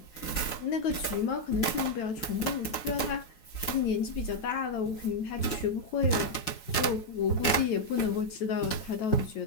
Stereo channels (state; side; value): late; right; 5.6 ms